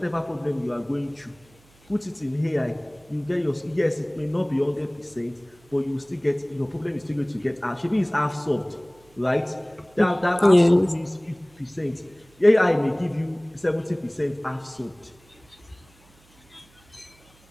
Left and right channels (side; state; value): right; noise; hum, 30 dB below the sound